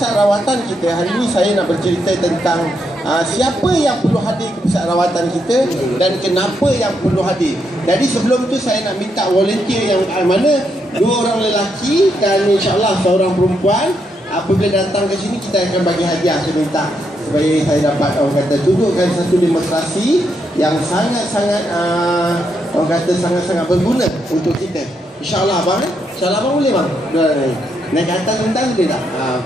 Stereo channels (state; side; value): normal; both; correlation 0.79